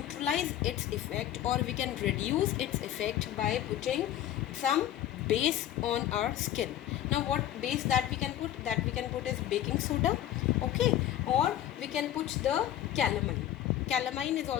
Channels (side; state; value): right; quieter; 12.0 dB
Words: its effect, or we can reduce its effect by putting some base on our skin. Now what base that we can put? That we can put is baking soda, okay, or we can put the calamine. Calamine is